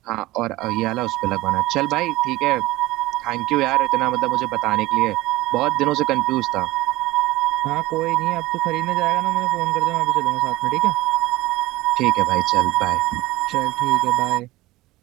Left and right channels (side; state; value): left; quieter; 18.5 dB